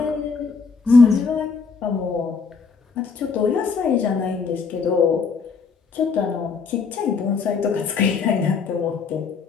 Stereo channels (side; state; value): right; quieter; 5.1 dB